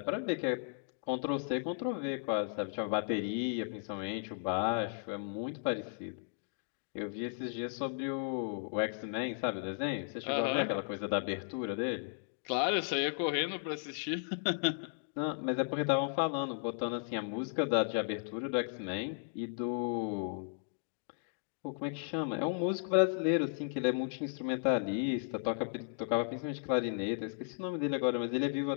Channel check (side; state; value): right; silent; digital silence